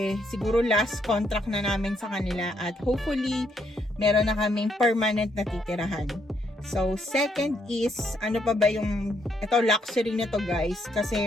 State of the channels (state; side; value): normal; both; correlation 0.74